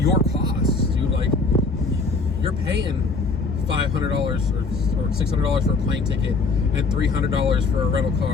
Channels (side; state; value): right; quieter; 4.1 dB